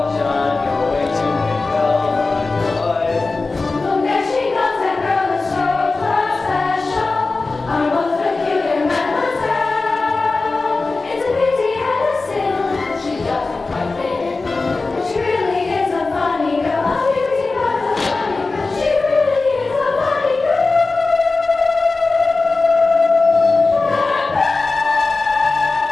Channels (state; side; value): quieter; right; 3.7 dB